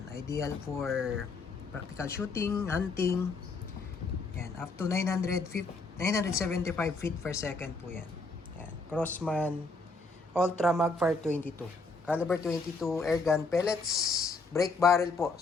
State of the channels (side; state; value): right; quieter; 3.7 dB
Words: ideal for practical shooting, hunting. Ayan, up to 975 feet per second po yan. Ayan, Crossman Ultra Magfire 22. Caliber 22 airgun pellets, break barrel po.